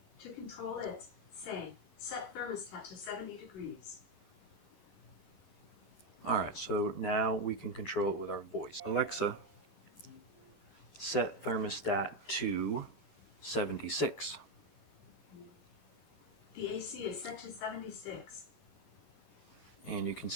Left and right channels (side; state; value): right; late; 11 ms